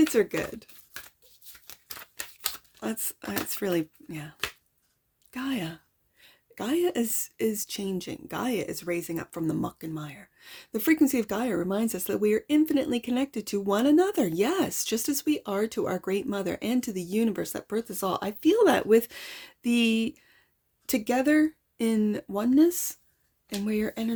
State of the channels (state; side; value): identical; both; correlation 1.00